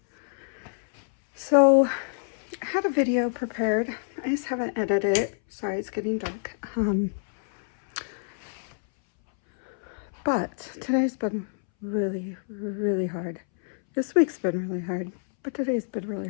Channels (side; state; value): right; silent; 60 dB below the other